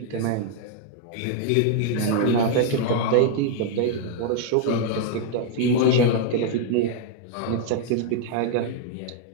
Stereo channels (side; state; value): both; different; correlation 0.00